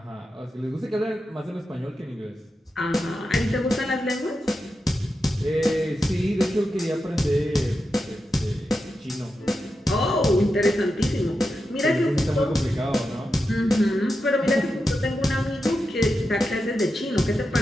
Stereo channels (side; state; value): both; normal; correlation 0.89